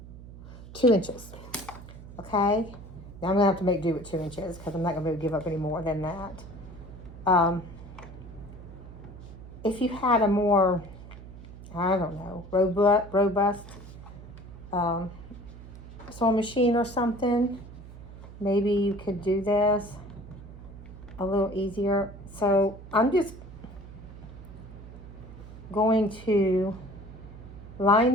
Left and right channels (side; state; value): right; noise; hum, 15 dB below the sound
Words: 2 inches, okay? Now I'm going to have to make do with 2 inches because I'm not going to be able to give up any more than that. If you had a more, I don't know, robust sewing machine or something, maybe you could do this a little easier. So I'm just going to line